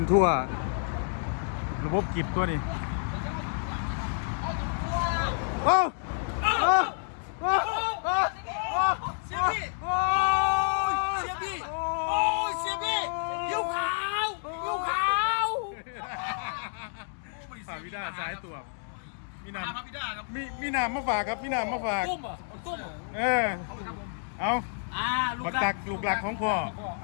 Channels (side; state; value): right; silent; digital silence